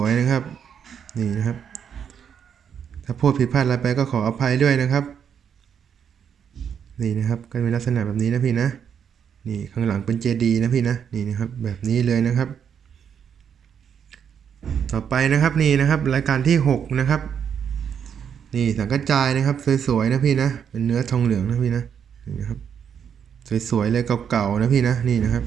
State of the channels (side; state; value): left; quieter; 7.9 dB